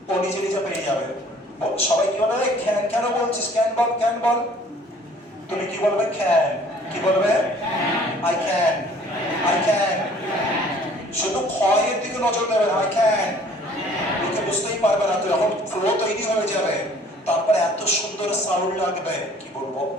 ও নিজে নিজে পেয়ে যাবে সবাই কি বলবে ক্যান কেন বলছিস ক্যান বল তুমি কি বলবে ক্যান কি বলবে আই ক্যান শুধু ক্ষয়ের দিকে নজর দেবে আই ক্যান লোকে বুঝতেই পারবে না তো এখন ফ্লো তৈরি হয়ে যাবে তারপরে এত সুন্দর সাউন্ড লাগবে কি বলবো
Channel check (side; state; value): both; normal; correlation 0.54